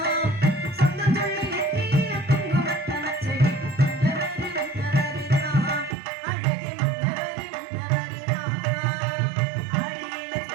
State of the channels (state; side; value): drops out; left; at 6.0 s